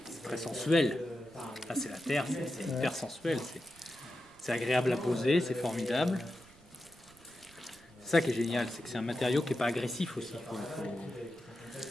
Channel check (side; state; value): right; noise; rumble, 27 dB below the sound